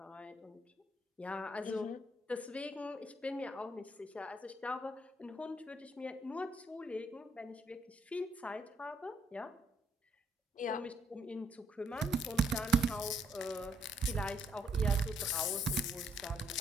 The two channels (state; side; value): normal; both; correlation 0.70